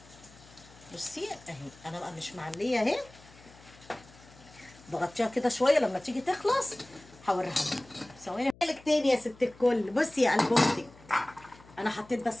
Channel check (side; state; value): left; noise; hum, 24 dB below the sound